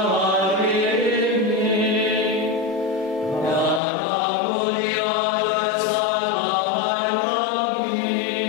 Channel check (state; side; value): drops out; right; at 3.8 s